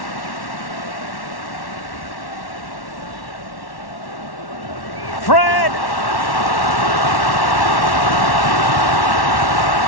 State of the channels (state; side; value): late; right; 1.1 ms